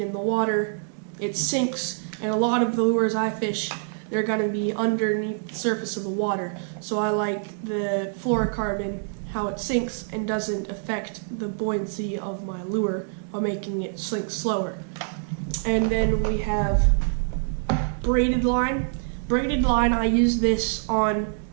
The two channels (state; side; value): silent; left; 61 dB below the other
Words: the water. It sinks, and a lot of the lures I fish, they're going to be underneath the surface of the water. So I like the fluorocarbon, how it sinks and doesn't affect the buoyancy of my lure by making it sink slower. And then we have braided line. Braided line, I use this on